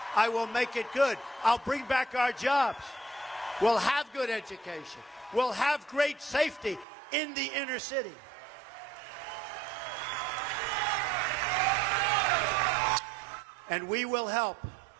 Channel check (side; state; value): left; drops out; at 6.9 s